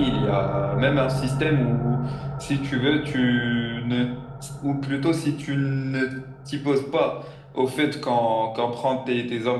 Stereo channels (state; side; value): identical; both; correlation 1.00